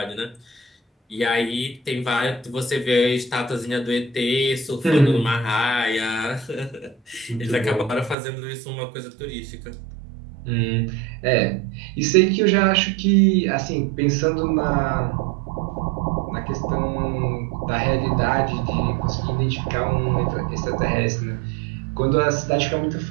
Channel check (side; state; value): left; drops out; at 8.2 s